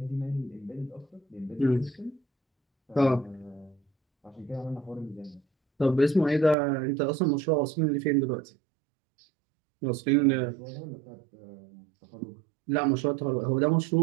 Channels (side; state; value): left; drops out; at 6.6 s